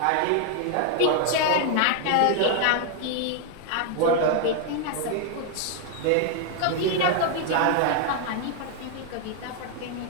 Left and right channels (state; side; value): different; both; correlation 0.00